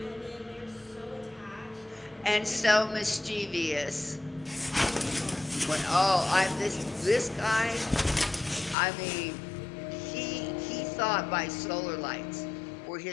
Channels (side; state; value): right; drops out; at 8.8 s